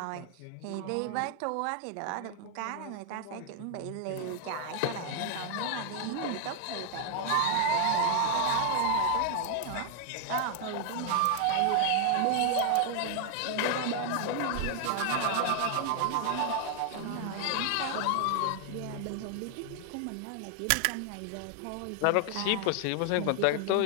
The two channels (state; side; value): different; both; correlation 0.00